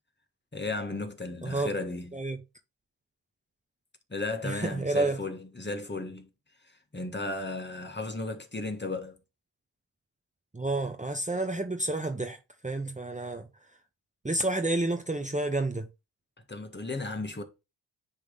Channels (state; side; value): normal; both; correlation 0.53